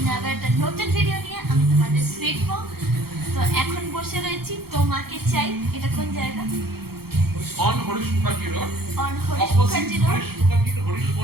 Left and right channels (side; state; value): left; late; 0.95 ms